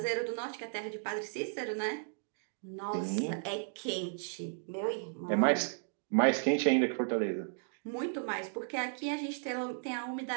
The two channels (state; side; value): silent; left; digital silence